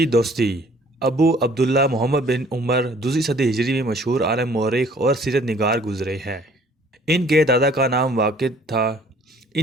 دوستی ابو عبداللہ محمد بن عمر دوسری صدی ہجری میں مشہور عالم مورخ اور سیرت نگار گزرے ہیں۔ ان کے دادا کا نام واقد تھا۔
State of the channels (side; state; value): both; normal; correlation 0.56